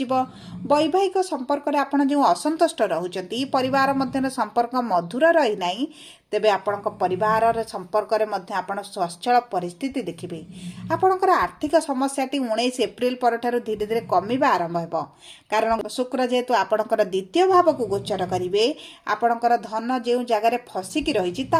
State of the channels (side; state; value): both; identical; correlation 1.00